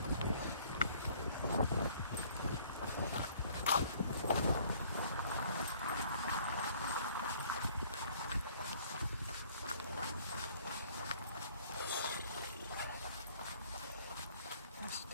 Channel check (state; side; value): inverted; both; correlation -0.57